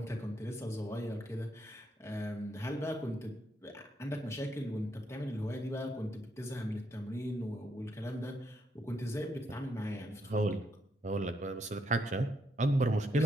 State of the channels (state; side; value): normal; both; correlation 0.77